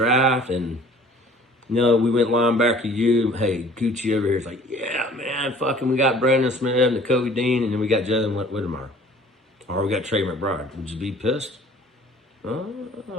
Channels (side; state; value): both; normal; correlation 0.51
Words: and, we went linebacker you, hey, Gucci over here is like, yeah, man, fucking we got Brandon Smith and Nakobe Dean, and then we got Jalen Whittemire. Or we got Trey McBride. Would you be pissed? What